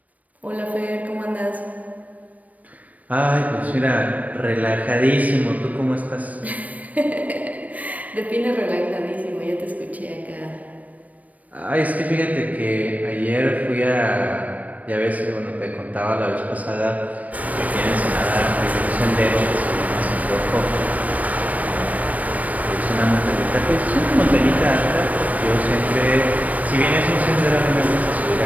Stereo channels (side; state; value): left; late; 0.071 ms